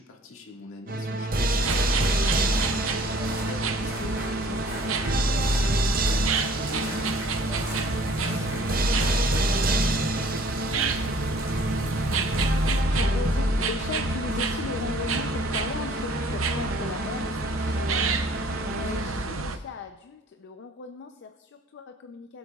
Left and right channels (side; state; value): both; normal; correlation 0.54